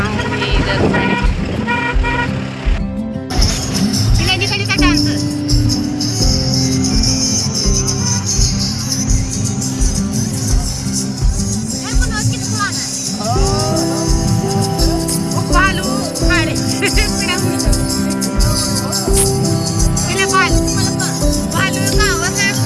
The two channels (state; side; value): identical; both; correlation 1.00